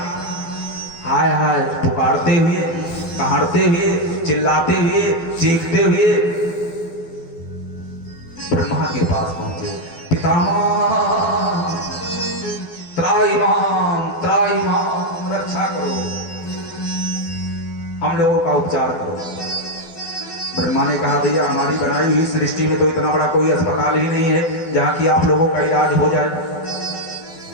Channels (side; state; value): right; late; 12 ms